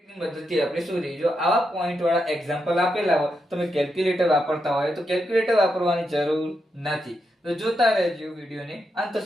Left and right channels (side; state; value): both; normal; correlation 0.84